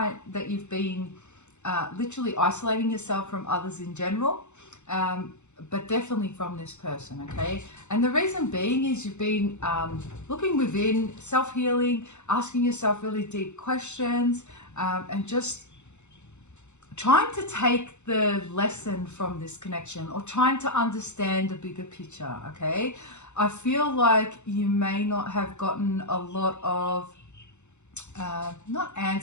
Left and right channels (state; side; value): late; right; 0.83 ms